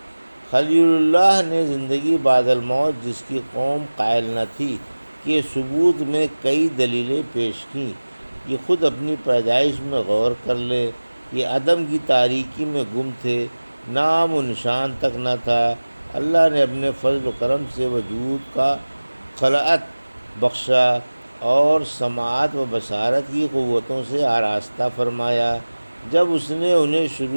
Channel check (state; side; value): inverted; both; correlation -1.00